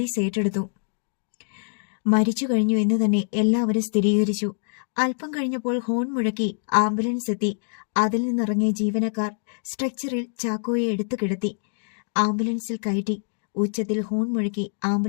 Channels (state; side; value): silent; right; digital silence